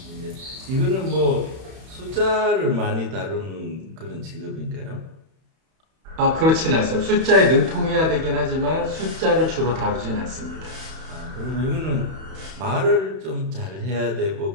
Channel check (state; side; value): late; left; 31 ms